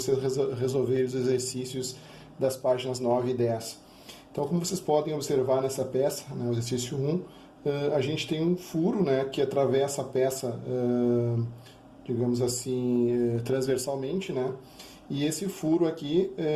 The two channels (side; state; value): both; identical; correlation 1.00